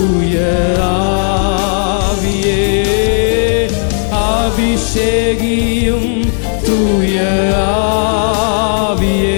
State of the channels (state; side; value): silent; right; digital silence